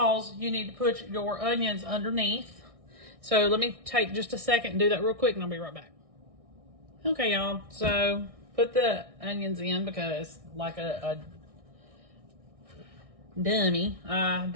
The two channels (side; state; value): left; late; 1.6 ms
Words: you need to put your onions underneath. So let me take just a second and do that real quick, and I'll be right back. Okay, y'all, so put the onions in because like a dummy, I